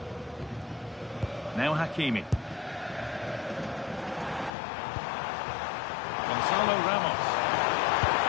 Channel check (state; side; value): drops out; right; at 4.5 s